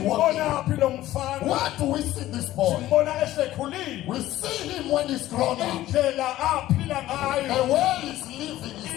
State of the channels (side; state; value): right; quieter; 14.9 dB